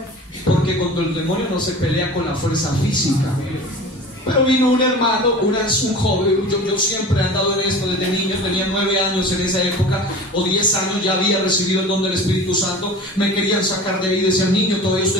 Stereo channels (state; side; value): normal; both; correlation 0.38